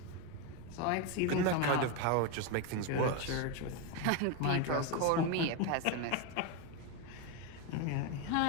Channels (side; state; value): both; different; correlation 0.03